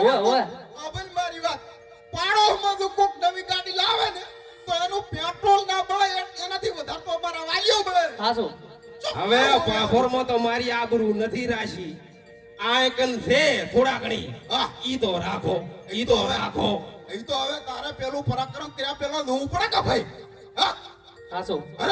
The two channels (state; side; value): identical; both; correlation 1.00